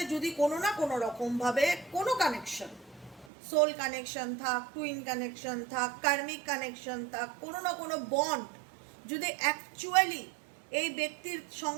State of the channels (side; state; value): left; drops out; at 3.2 s